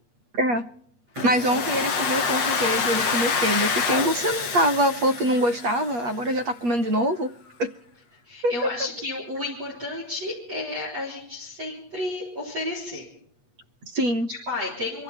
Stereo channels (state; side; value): late; left; 8.4 ms